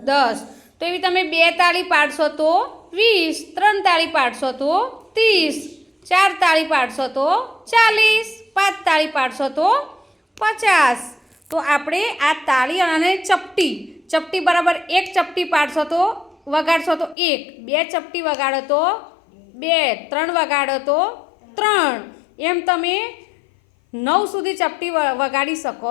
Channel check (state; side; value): drops out; right; at 17.2 s